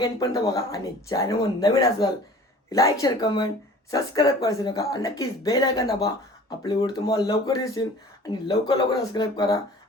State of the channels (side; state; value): both; normal; correlation 0.46